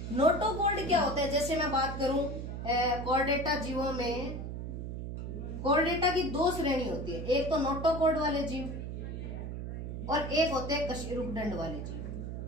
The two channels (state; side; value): noise; right; hum, 6 dB below the sound